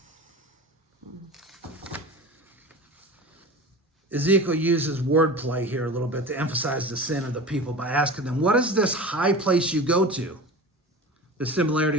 Ezekiel uses wordplay here a little bit to emphasize the sin of the people by asking them, what is this high place you go to? The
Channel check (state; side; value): normal; both; correlation 0.33